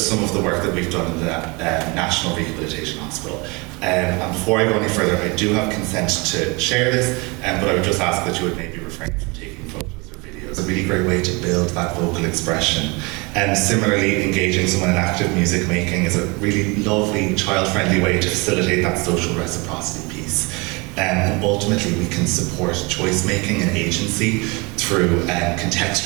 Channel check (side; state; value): left; quieter; 27.6 dB